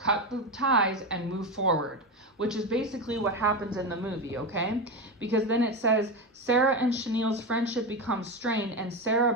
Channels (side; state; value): both; normal; correlation 0.17